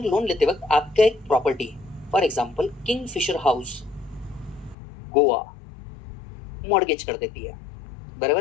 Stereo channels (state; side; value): drops out; right; at 4.8 s